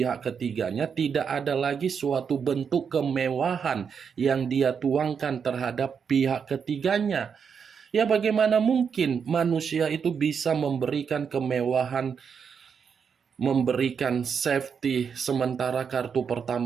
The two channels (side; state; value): left; quieter; 6.6 dB